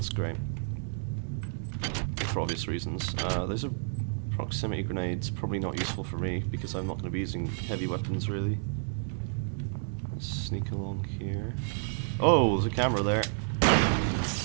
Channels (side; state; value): left; silent; digital silence